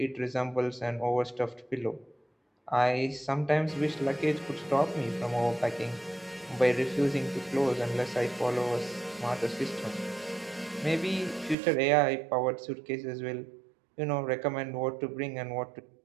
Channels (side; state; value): left; drops out; at 11.6 s